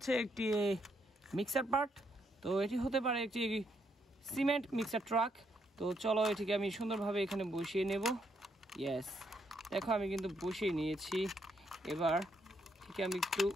একটি মিক্সার পার্ট। তো এটি হতে পারে একটি সিমেন্ট মিক্সার ট্রাক। তো চলো এটিকে আমি সুন্দরভাবে এখানে বসিয়ে নেব। ইয়েস, দেখো আমি কিন্তু বসিয়ে নিয়েছি। এবার ঠিক আমি একটু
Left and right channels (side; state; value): both; normal; correlation 0.75